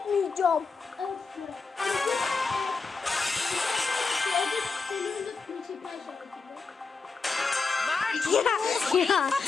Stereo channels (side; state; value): right; quieter; 4.5 dB